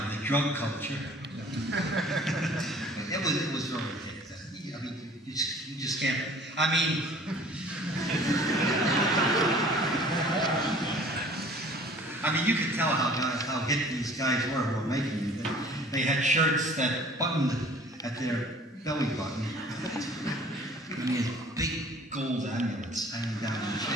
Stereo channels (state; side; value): normal; both; correlation 0.50